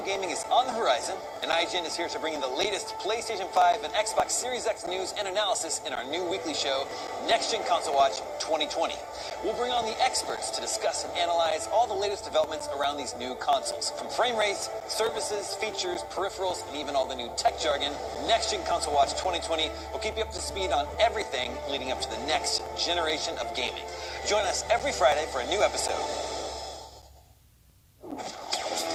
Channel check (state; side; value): identical; both; correlation 1.00